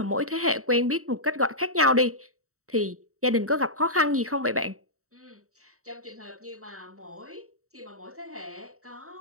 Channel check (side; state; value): left; late; 0.64 ms